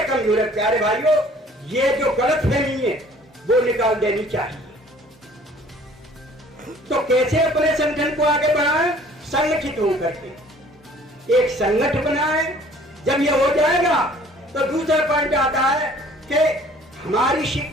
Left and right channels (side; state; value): both; normal; correlation 0.54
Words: कमजोर है। प्यारे भाइयों, ये जो गलतफहमी है वो निकाल देनी चाहिए। तो कैसे अपने संगठन को आगे बढ़ाएं? संगठित होकर के एक संगठन बनाएं। जब ये हो जाएगा तो दूसरा पॉइंट आता है कि हमारी